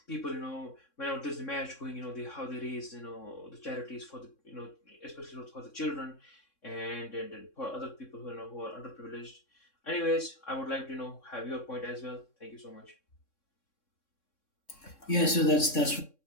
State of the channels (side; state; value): right; late; 3.6 ms